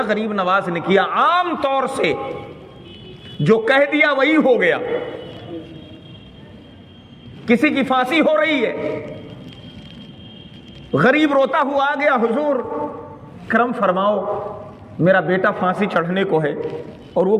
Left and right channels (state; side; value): identical; both; correlation 1.00